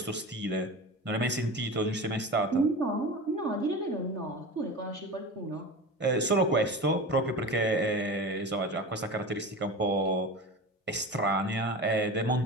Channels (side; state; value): both; normal; correlation 0.30